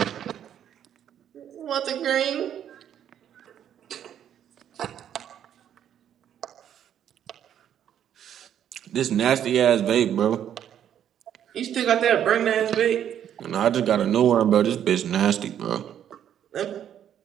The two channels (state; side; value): quieter; left; 9.8 dB